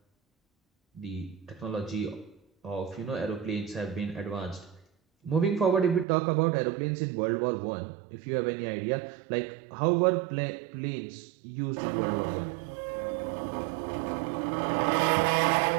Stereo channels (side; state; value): left; drops out; at 6.1 s